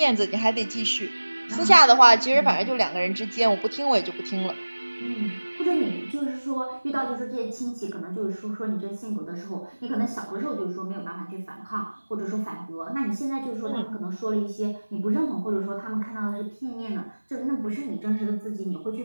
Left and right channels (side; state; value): both; inverted; correlation -1.00